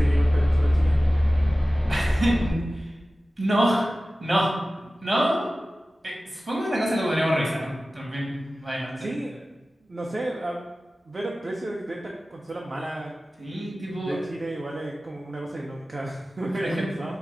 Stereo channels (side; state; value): both; normal; correlation 0.96